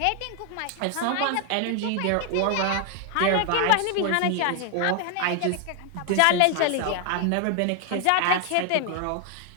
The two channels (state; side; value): different; both; correlation 0.00